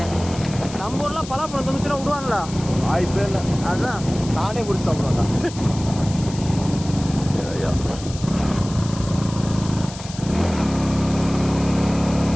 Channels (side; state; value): left; noise; hiss, 14 dB below the sound